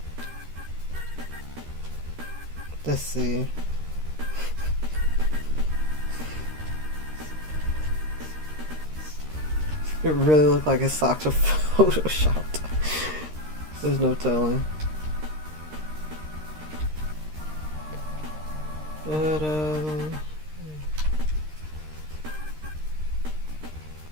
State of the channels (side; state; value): left; late; 13 ms